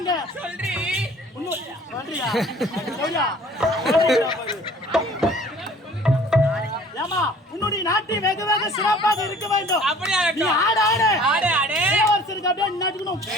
சொல்றி சொல்றியா? சொல்றியா? ஏமா உன்னுடைய நாட்டை வெகு வெகு சிறப்பாக இருக்க வேண்டும். அப்படியா? நீ ஆடு ஆடு ஆடு ஆடு இளவரசருக்கு அப்படியே நட்டுக்கணும்.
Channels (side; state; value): both; normal; correlation 0.50